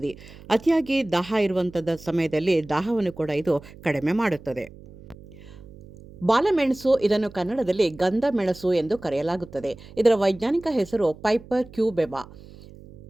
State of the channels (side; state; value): right; noise; hum, 19 dB below the sound